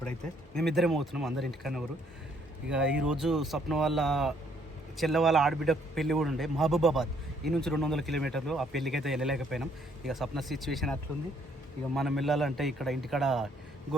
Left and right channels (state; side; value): normal; both; correlation 0.66